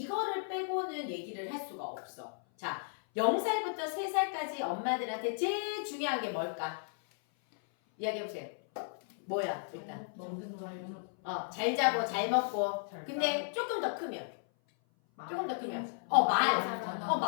빼고는 얘기를 할 수가 없어. 자, 0살부터 3살까지 엄마들한테 제일 중요한 게 뭘까? 이야기해보세요. 뭐야 일단? 먹는 거 잘 자고 잘 먹고. 근데 조금 더 크면 조금 더 크면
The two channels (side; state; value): right; silent; 55 dB below the other